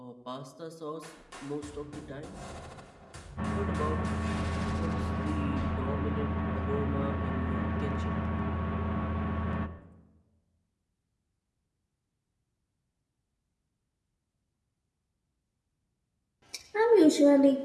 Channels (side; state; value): both; identical; correlation 1.00